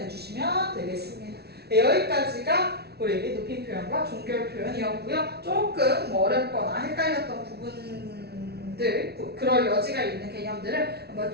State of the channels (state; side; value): late; left; 0.47 ms